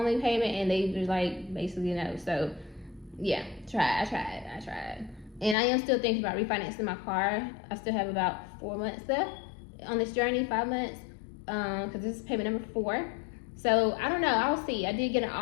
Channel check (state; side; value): drops out; right; at 5.6 s